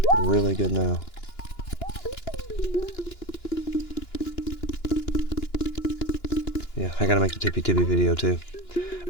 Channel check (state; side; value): late; right; 2.9 ms